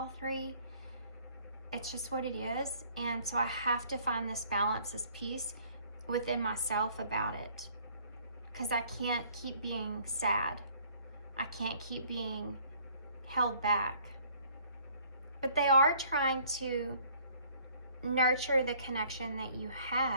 3. It's just what it is. And so I have to find this balance, this peace within myself about it. Because I can't keep being sad. I can't keep being held back. But they are trying to nurture the connection that you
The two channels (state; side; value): inverted; both; correlation -0.58